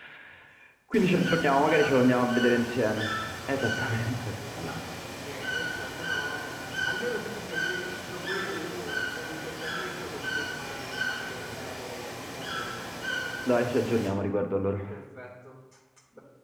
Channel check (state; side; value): identical; both; correlation 1.00